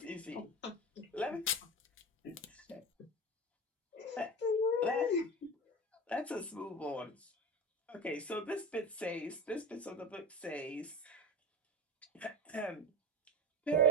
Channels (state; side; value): normal; both; correlation 0.24